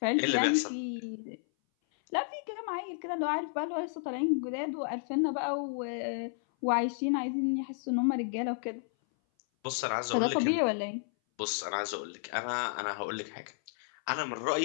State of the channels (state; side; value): silent; right; 56 dB below the other